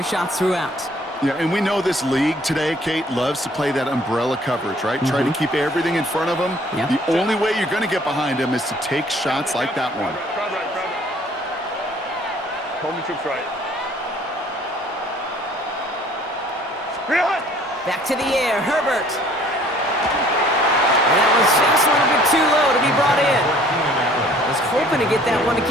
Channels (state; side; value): normal; both; correlation 0.56